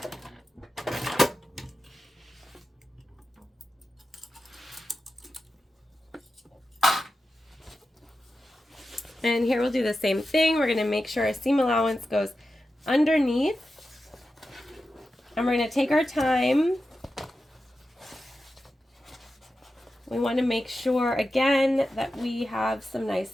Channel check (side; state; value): both; normal; correlation 0.92